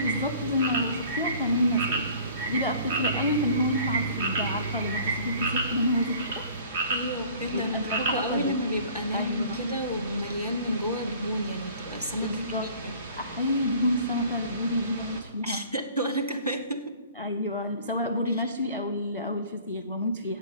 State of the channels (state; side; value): inverted; both; correlation -0.50